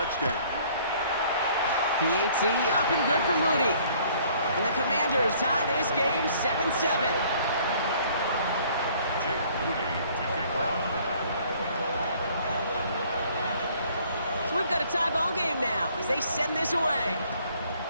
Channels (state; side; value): inverted; both; correlation -0.58